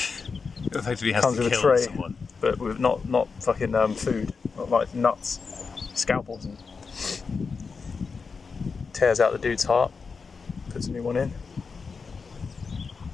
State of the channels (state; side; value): quieter; right; 5.0 dB